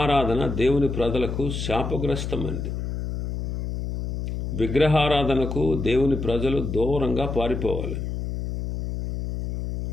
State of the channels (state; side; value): noise; left; hum, 4 dB below the sound